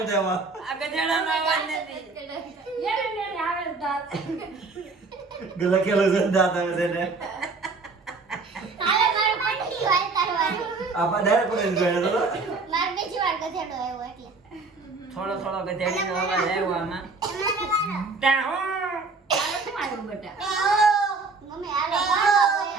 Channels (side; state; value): left; quieter; 4.1 dB